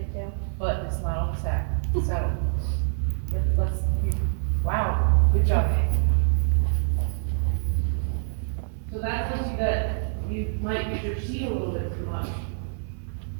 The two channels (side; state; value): left; silent; digital silence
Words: but it's not on the sack. So wow, good job. So that tells you that you might use your seat a little bit too much